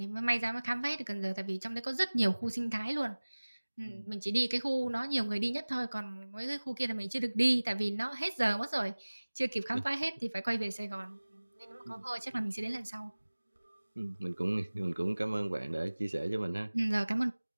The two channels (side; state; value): both; inverted; correlation -1.00